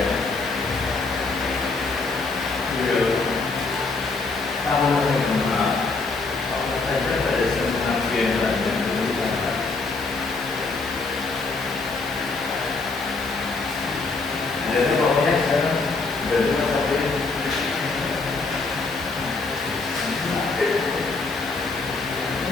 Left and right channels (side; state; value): right; quieter; 3.9 dB